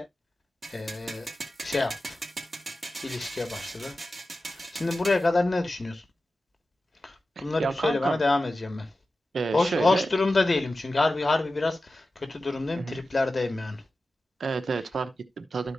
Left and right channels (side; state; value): both; normal; correlation 0.94